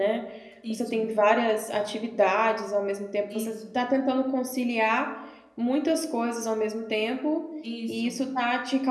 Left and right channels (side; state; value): both; identical; correlation 1.00